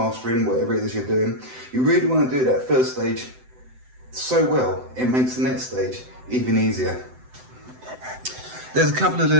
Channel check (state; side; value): late; left; 7.8 ms